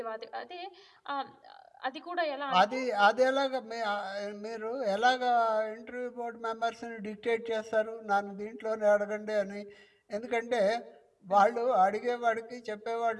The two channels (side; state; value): both; identical; correlation 1.00